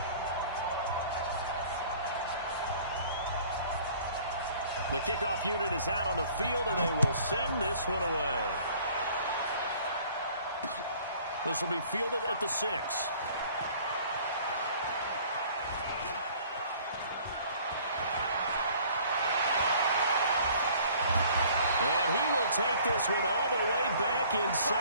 The kickoff unit is out on the field, and they will send this one away. This will be fielded at the 6. And he will take this one all the way back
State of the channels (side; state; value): both; inverted; correlation -0.53